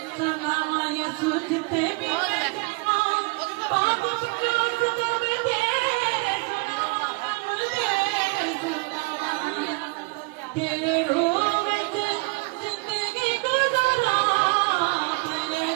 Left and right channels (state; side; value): quieter; left; 28.5 dB